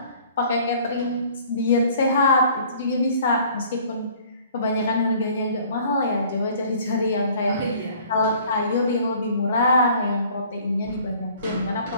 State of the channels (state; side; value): inverted; both; correlation -0.54